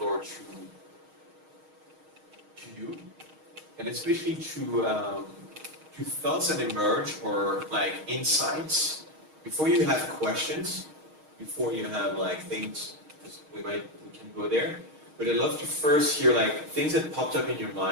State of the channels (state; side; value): late; left; 6.4 ms